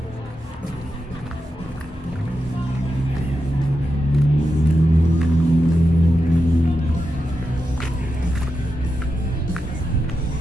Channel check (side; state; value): both; normal; correlation 0.88